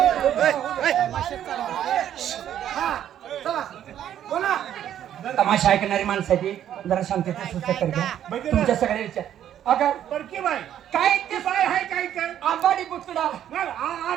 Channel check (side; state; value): left; quieter; 10.7 dB